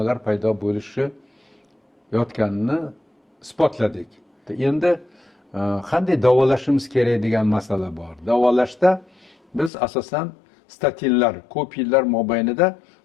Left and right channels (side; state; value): right; drops out; at 9.7 s